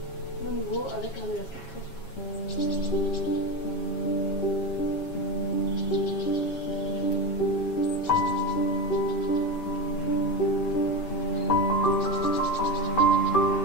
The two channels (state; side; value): late; right; 7.3 ms